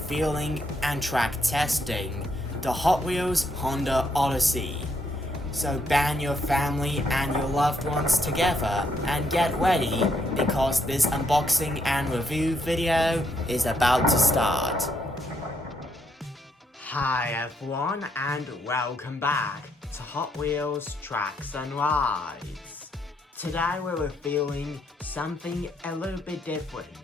and track testing the Hot Wheels Honda Odyssey. So band your family and your loved ones together and get ready because this unboxing and review video is about to start. Hi everyone and welcome back to Hot Wheels Tracks and Rides. Today we're revealing something a little bit different.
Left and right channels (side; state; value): both; normal; correlation 0.75